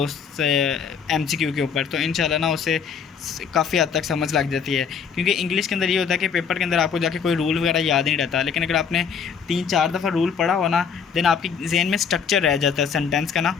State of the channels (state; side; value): quieter; right; 6.7 dB